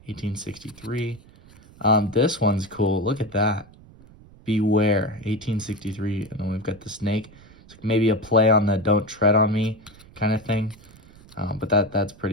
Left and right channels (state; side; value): noise; right; rumble, 24 dB below the sound